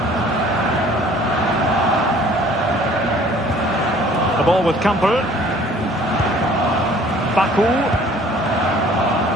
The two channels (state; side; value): normal; both; correlation 0.54